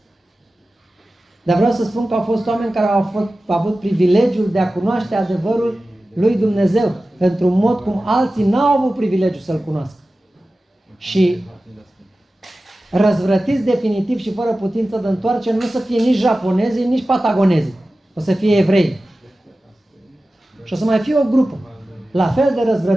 Dar vreau să spun că au fost oameni care au avut privilegiul de a cunoaște adevărul lui Dumnezeu într-un mod cum alții n-au avut privilegiul să-L cunoască. Și răzvrătiți definitiv și fără putință de întoarcere nu să fie nici japonezii, nici patagonezii. O să fie evrei. Și o să mai fie o grupă la fel de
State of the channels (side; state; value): both; normal; correlation 0.95